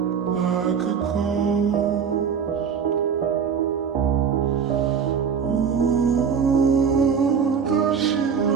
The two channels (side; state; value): left; quieter; 6.8 dB